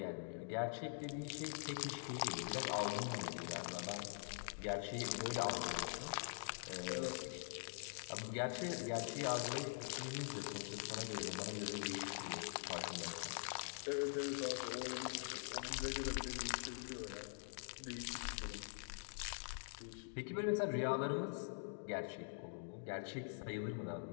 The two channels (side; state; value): right; silent; digital silence